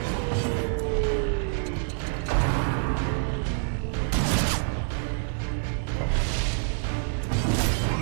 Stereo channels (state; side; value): silent; left; 60 dB below the other